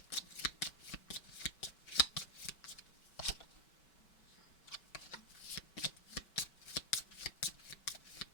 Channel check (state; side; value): late; right; 5.3 ms